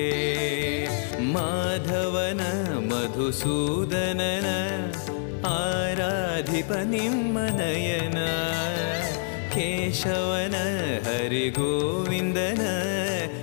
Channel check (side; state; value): right; silent; 60 dB below the other